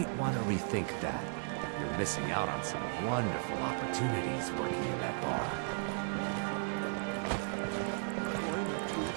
want to rethink that. You're missing out on some wonderful opportunities working in that bar.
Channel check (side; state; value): left; silent; digital silence